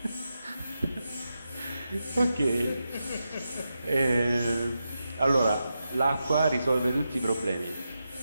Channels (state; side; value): inverted; both; correlation -0.88